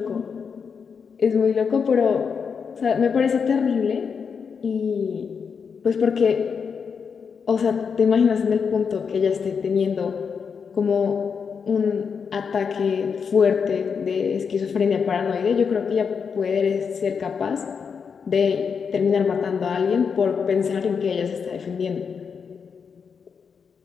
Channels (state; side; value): quieter; right; 6.2 dB